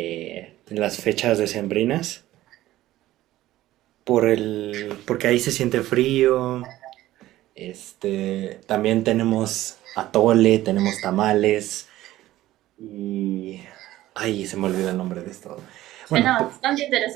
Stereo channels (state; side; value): quieter; left; 15.3 dB